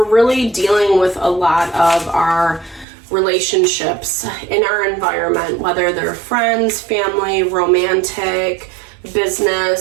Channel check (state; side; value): drops out; left; at 2.9 s